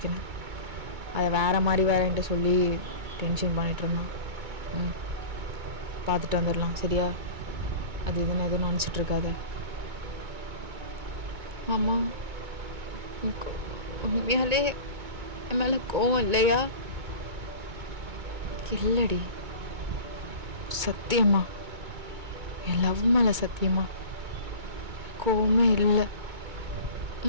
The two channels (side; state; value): left; late; 2.2 ms